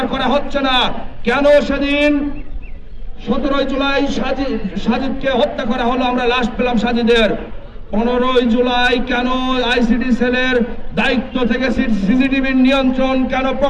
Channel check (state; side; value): identical; both; correlation 1.00